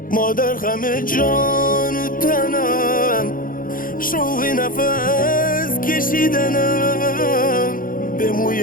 مادر غم جان و تنم، شوق نفس کشیدنم، به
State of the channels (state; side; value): late; right; 0.40 ms